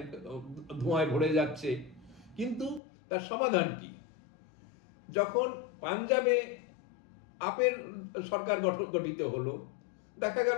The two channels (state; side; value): drops out; right; at 2.8 s